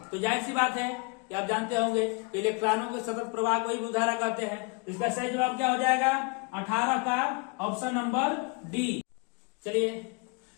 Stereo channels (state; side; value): quieter; right; 32.1 dB